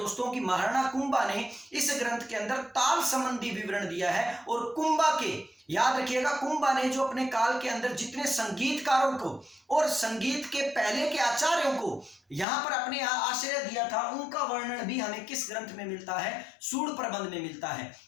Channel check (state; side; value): drops out; right; at 12.5 s